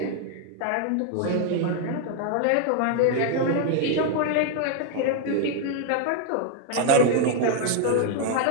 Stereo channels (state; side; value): different; both; correlation 0.01